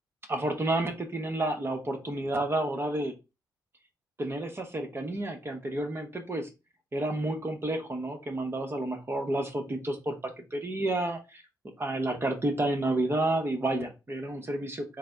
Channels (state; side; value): normal; both; correlation 0.77